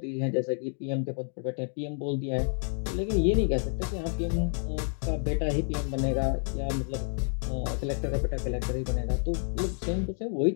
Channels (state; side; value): silent; right; 58 dB below the other